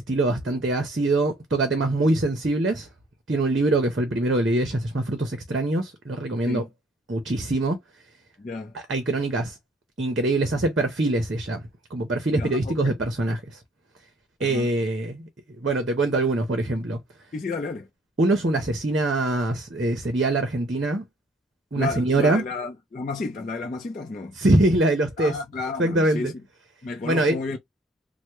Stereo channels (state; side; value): normal; both; correlation 0.60